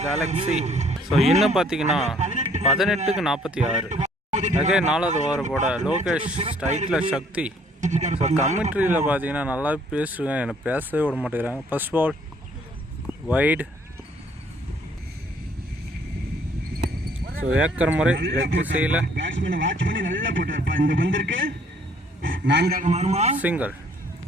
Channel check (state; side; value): normal; both; correlation 0.61